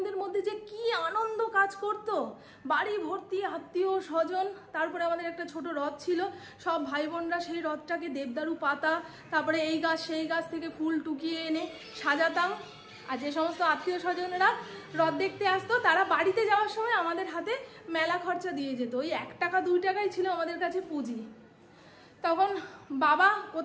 মধ্যে যে কি আনন্দ কাজ করত, বাড়ি ভর্তি আত্মীয় স্বজন। তারপরে আমাদের একটা ছোট রথ ছিল, সব ভাই বোনরা সেই রথটাকে দেবদারু পাতা, তারপরে এই গাছ সেই গাছ থেকে ফুল টুকিয়ে এনে সাজাতাম। আর যে সমস্ত আত্মীয় স্বজনেরা রথ দেখতে আসতো, তারা বাড়িতে যাওয়ার সময় আমাদের হাতে মেলা খরচা দিয়ে যেত। ওই 1 টাকা 2 টাকাই ছিল আমাদের কাছে পুঁজি। তখন বাবা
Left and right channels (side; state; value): both; identical; correlation 1.00